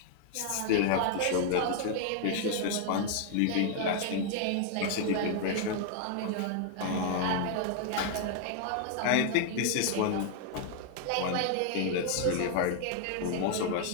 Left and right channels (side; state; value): both; different; correlation 0.00